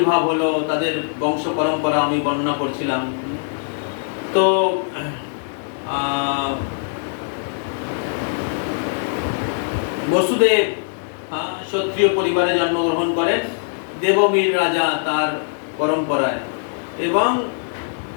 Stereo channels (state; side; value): silent; right; digital silence